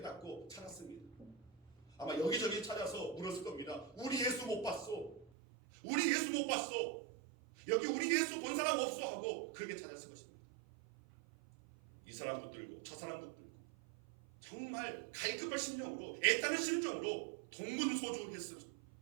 찾았습니다. 아마 여기저기 찾아서 물었을 겁니다. 우리 예수 못 봤어. 우리 예수 못 봤어. 여기 우리 예수 본 사람 없어 하고 그렇게 찾았을 것입니다. 이 사람도 들고 저 사람도 들고 정말 갈급한 심령으로 애타는 심정으로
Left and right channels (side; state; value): left; drops out; at 5.3 s